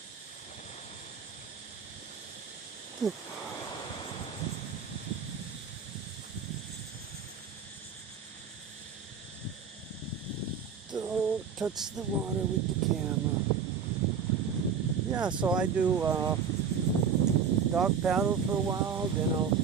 Don't touch the water with the camera. Yeah, so I do dog paddle for a while, then I'll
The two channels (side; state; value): left; quieter; 6.6 dB